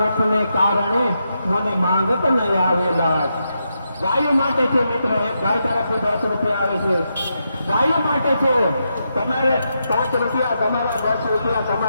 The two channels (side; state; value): both; inverted; correlation -0.84